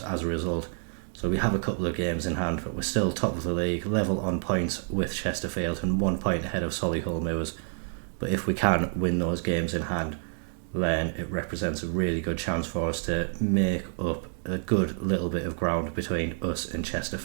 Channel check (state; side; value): silent; left; digital silence